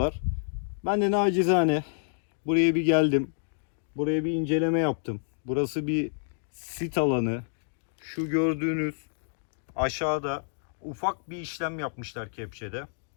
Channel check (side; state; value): right; silent; digital silence